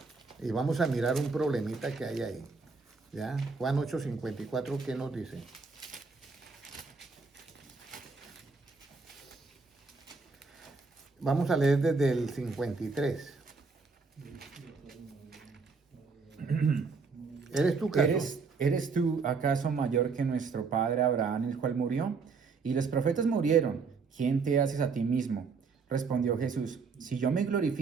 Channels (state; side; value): quieter; left; 4.7 dB